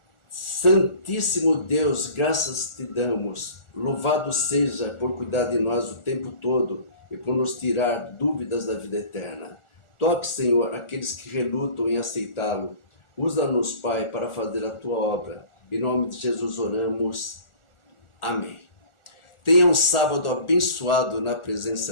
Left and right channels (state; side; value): late; right; 1.4 ms